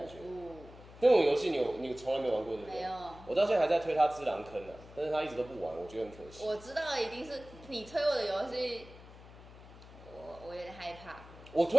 觉。那种游戏你从来没玩过对不对？没有。我到现在还在推他只狼坑但是他一直都不玩，我觉得很可惜。我知道一定是你推我的游戏，我有点害怕。我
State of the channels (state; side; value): noise; left; hum, 18 dB below the sound